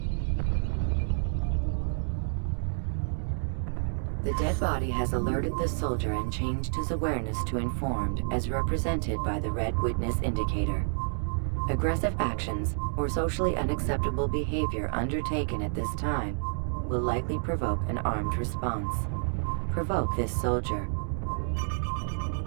The dead body has alerted the soldier and changed his awareness to informed, as represented by the red witness indicator. Aggressive actions or socially unacceptable behavior undertaken at this time will likely provoke an armed response. Provoke this soldier.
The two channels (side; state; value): left; silent; digital silence